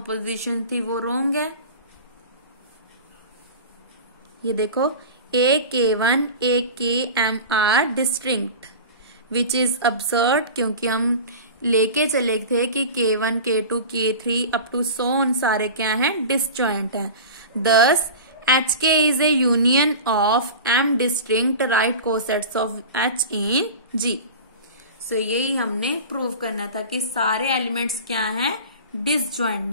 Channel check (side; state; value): both; inverted; correlation -0.32